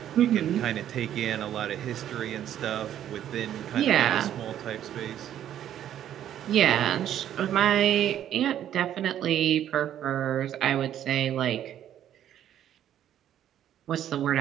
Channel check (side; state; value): left; quieter; 10.9 dB